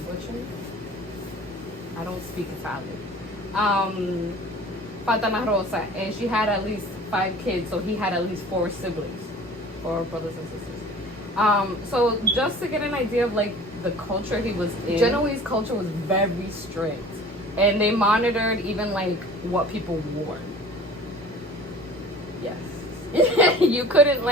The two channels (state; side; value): normal; both; correlation 0.44